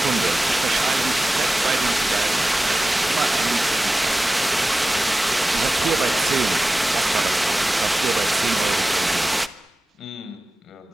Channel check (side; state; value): both; normal; correlation 0.95